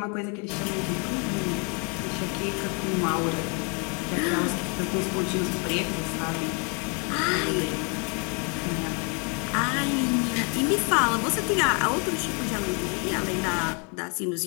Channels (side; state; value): right; quieter; 35.0 dB